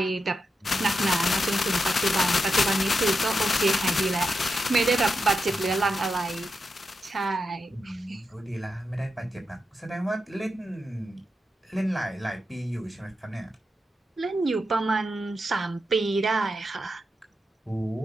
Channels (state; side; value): normal; both; correlation 0.87